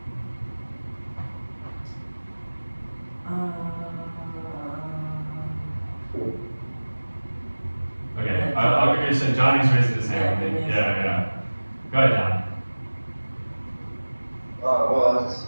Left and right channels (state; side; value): inverted; both; correlation -1.00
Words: Okay, I'll give you saying. Johnny's raising his hand. Yeah. Go ahead, John. Well, I just,